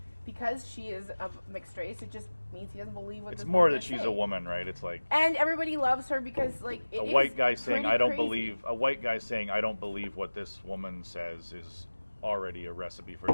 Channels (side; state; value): both; inverted; correlation -1.00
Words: because she is of mixed race. It just means he doesn't believe what. It's this more woman that is she's a saying. woman, right? It's like And everybody loves her because like it a is white guy saying, pretty I don't crazy. believe, a white guy saying, I don't believe what this woman says is already a recipe for